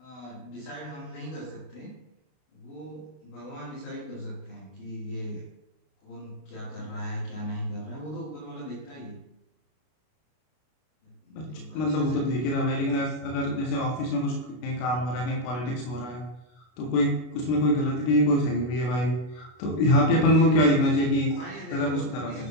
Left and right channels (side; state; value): right; late; 33 ms